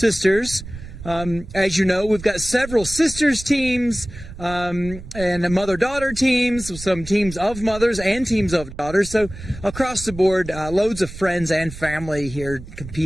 As you know, we've got several sisters teams and mother-daughter teams, some teams of mothers and teams of daughters. So across the board, loads of friends and family here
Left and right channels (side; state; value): right; noise; rumble, 13 dB below the sound